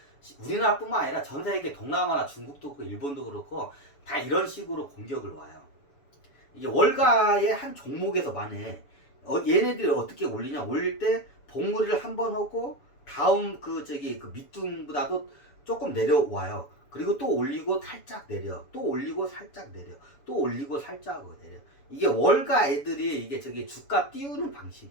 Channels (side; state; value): right; late; 7.1 ms